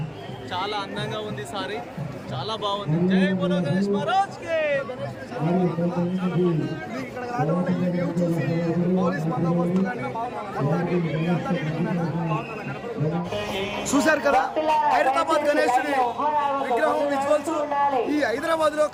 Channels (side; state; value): both; identical; correlation 1.00